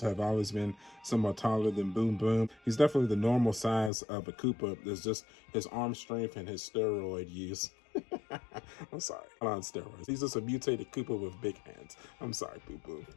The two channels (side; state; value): right; drops out; at 3.9 s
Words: have always been somewhat taller than Boom Boom. He's definitely the normal size of a Koopa. There's just his arm strength and his steroid use. I'm sorry, on steroids. He's just a mutated Koopa with big hands. I'm sorry, Boo Boo.